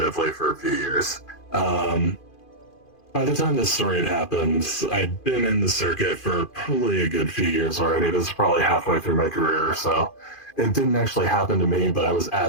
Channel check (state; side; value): late; right; 2.5 ms